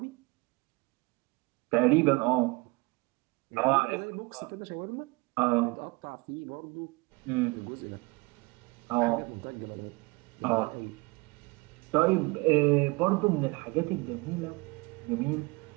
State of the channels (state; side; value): quieter; left; 25.8 dB